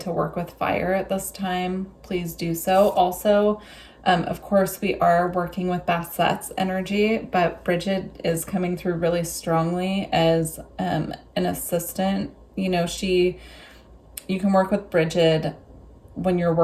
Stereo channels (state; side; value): identical; both; correlation 1.00